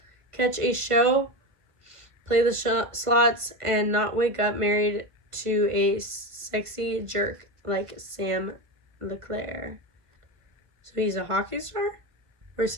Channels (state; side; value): late; left; 1.5 ms